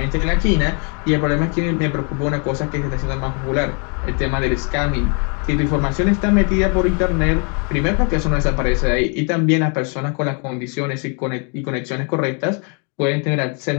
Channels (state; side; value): quieter; right; 37.6 dB